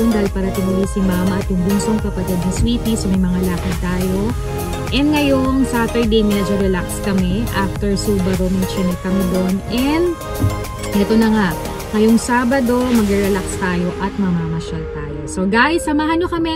dahil parating ulit si Mama at yung bunsong kapatid ni Sweetie, so may mga lakad tayo. And ngayong Saturday, medyo relax kami. After Subaru, may chinek kami doon. And ito na nga, ngayong Sabado, mag-relax tayo at mamamasyal tayo. So guys, samahan nyo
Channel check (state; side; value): identical; both; correlation 1.00